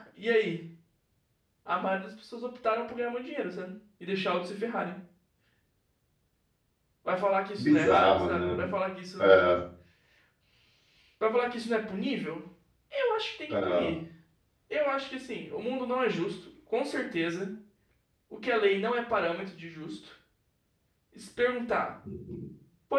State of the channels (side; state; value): both; identical; correlation 1.00